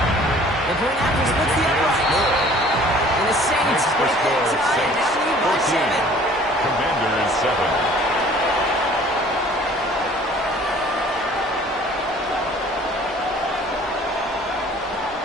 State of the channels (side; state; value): both; normal; correlation 0.52